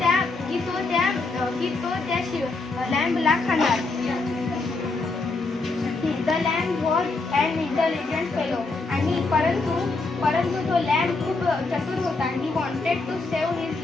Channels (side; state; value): right; quieter; 3.6 dB